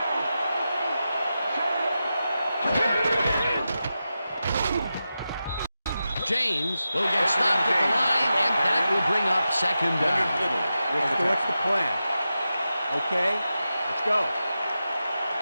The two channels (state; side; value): inverted; both; correlation -0.91